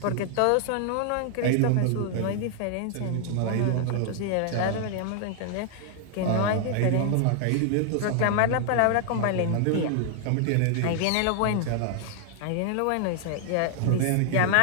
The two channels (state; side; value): different; both; correlation 0.00